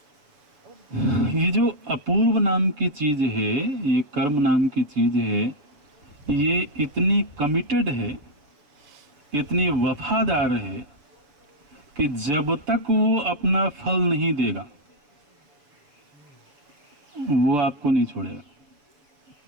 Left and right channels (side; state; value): left; late; 6.9 ms